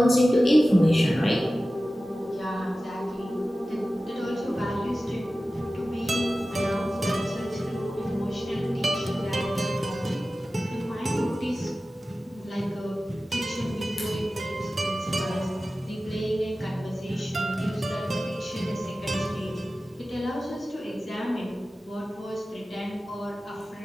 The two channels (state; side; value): normal; both; correlation 0.95